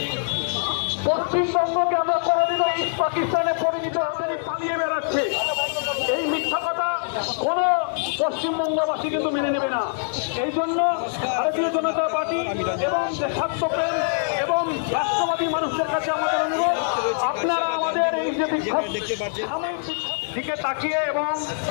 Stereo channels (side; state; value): right; silent; digital silence